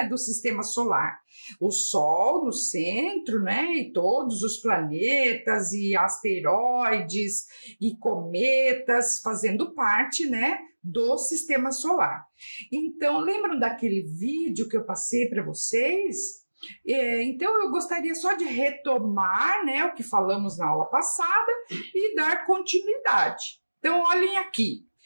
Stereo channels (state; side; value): inverted; both; correlation -1.00